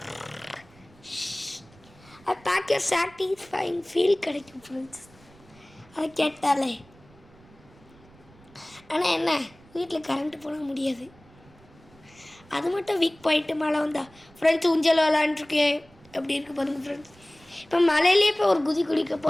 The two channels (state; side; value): noise; right; rumble, 26 dB below the sound